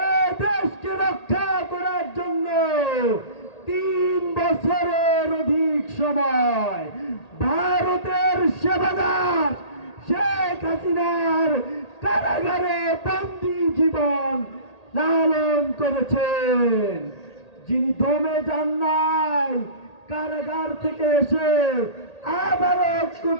এ দেশকে রক্ষা করার জন্য 3 বছরের অধিক সময় ভারতের সেবাদার শেখ হাসিনার কারাগারে বন্দী জীবন লালন করেছেন। যিনি দমে যান নাই, কারাগার থেকে এসে আবারও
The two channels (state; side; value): late; right; 1.8 ms